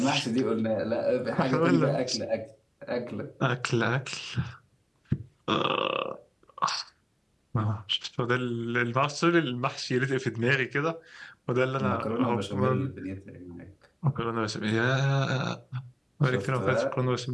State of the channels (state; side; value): identical; both; correlation 1.00